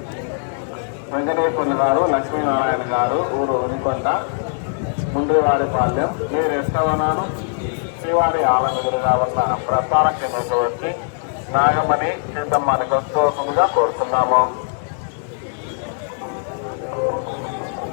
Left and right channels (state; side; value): silent; right; 60 dB below the other